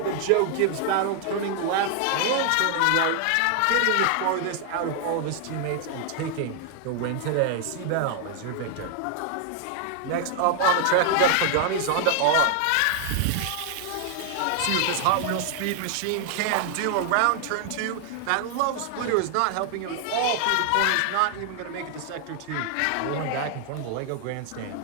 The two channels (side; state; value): both; different; correlation 0.00